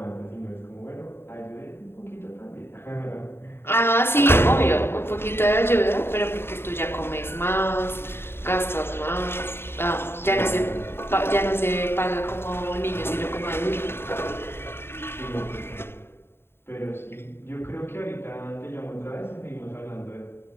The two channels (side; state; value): right; late; 0.11 ms